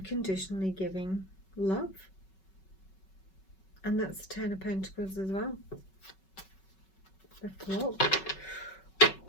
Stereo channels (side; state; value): right; late; 5.3 ms